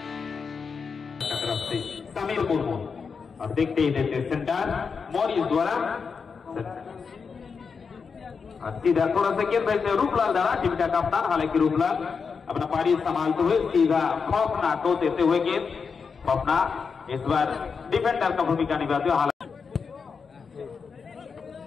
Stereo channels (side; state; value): right; quieter; 5.6 dB